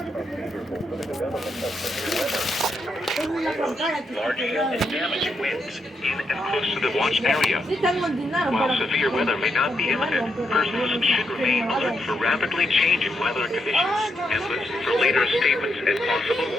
are favorable for the development of severe weather. Large hail and damage winds in and close to the watch area. While severe weather may not be imminent, persons should remain alert for rapidly changing weather conditions and listen for later statements and possible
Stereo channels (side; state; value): both; normal; correlation 0.81